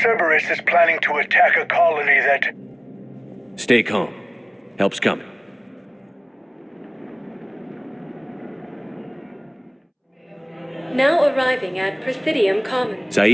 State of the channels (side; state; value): both; identical; correlation 1.00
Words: Cerberus is planning to attack a colony that... Stay calm. Help's coming. Now arriving at Presidium Commons.